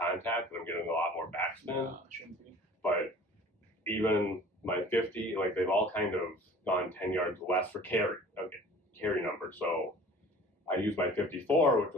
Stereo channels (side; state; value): both; normal; correlation 0.46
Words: and I'm getting a lot more backspin, No, it shouldn't be. but even my 50, like they've all kind of gone 10 yards less for carry number. So I used my 54, which